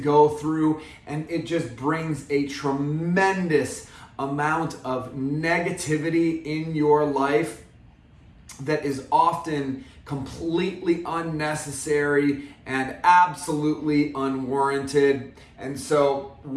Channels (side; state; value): both; identical; correlation 1.00